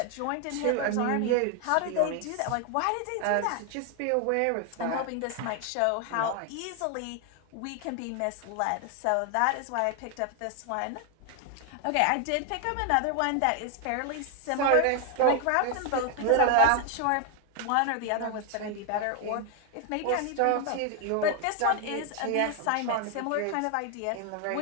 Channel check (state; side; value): different; both; correlation 0.00